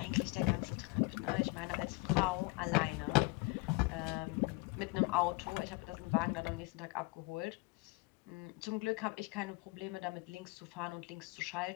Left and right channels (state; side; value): quieter; right; 24.7 dB